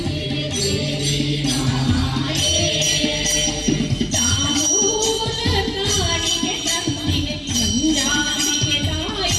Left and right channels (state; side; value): identical; both; correlation 1.00